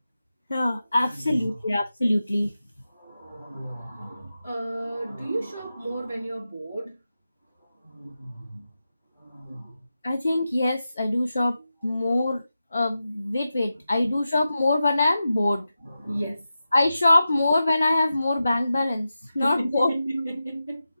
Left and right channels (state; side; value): inverted; both; correlation -0.91